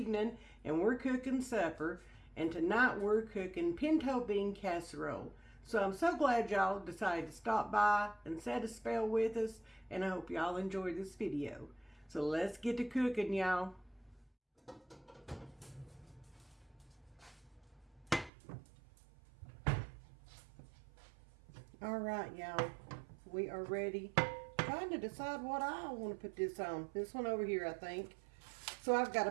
and we're cooking supper. And tonight we're cooking pinto bean casserole. So I'm so glad y'all decided to stop by and set a spell with us, and I hope y'all enjoy this video. So let's get to cooking, y'all. All right, y'all, we are ready. Trying to decide what I want to put this on. This one over here, I think. So I've got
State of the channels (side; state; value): left; drops out; at 18.3 s